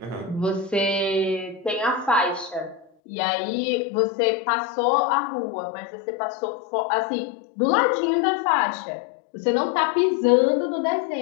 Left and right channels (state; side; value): drops out; right; at 2.9 s